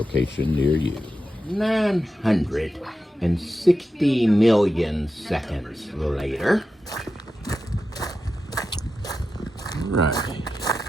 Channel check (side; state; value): both; normal; correlation 0.90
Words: near you. 960 million seconds later. Right.